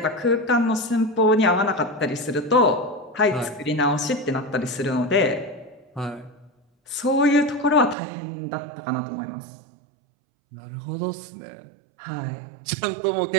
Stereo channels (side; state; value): left; drops out; at 8.0 s